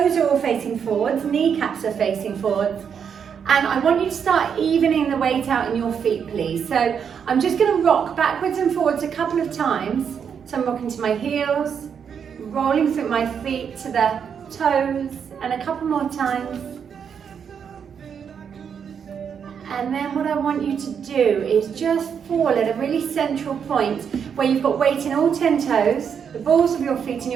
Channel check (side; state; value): left; quieter; 7.3 dB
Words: are all facing forwards, kneecaps are facing forwards. And I want you to start evening the weight out in your feet, please. So I'm just going to rock backwards and forwards a couple of times. So I'm rocking to my heels, rolling through my feet to the toes, and a couple more times. And then what I want you to do is just fall at a really central point where you've got weight in all 10 toes, the balls of your feet and